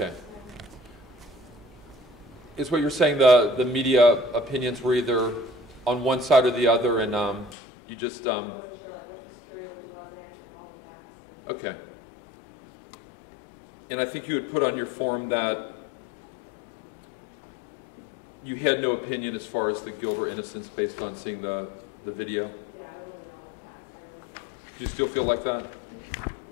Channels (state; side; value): drops out; right; at 7.6 s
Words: Is what you're saying the media opinions were either on one side or the other, and you just I wasn't sure like what was true, what wasn't, all of that. okay. And I think you had put on your form that you had no opinion as far as the guilt or innocence based on seeing the video. Yeah, I really know all of that. Do you still feel like that?